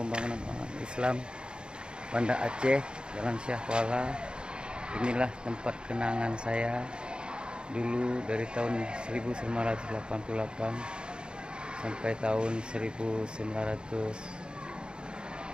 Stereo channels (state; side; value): late; left; 0.051 ms